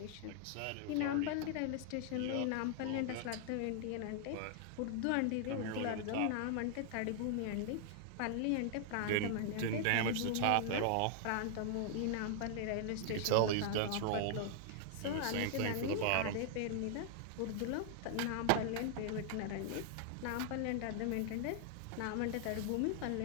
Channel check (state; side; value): different; both; correlation 0.00